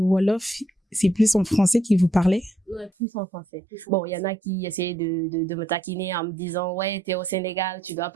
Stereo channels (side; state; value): both; normal; correlation 0.73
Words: c'est plus en français qu'ils vous parlaient? Ouais, plus en français. Bon, il y en a qui essayaient de me taquiner en me disant, ouais, t'es au Sénégal, tu dois